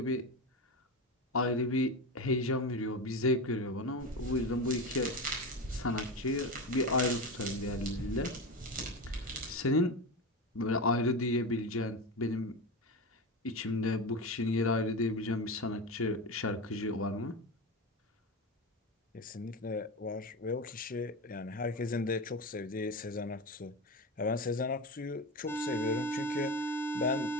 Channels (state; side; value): normal; both; correlation 0.21